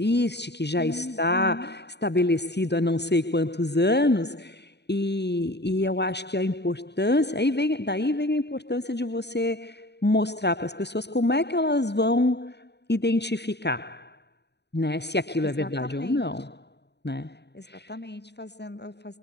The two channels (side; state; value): right; late; 0.49 ms